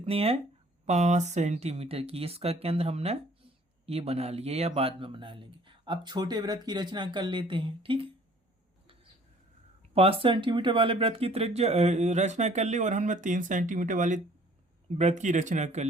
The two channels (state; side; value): normal; both; correlation 0.55